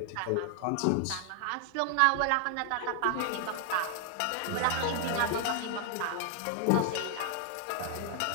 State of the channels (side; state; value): both; different; correlation 0.00